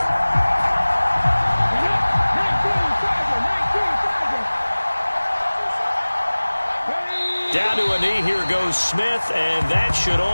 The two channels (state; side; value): inverted; both; correlation -1.00